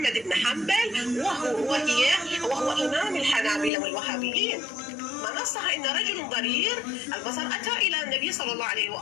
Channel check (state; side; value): drops out; right; at 3.7 s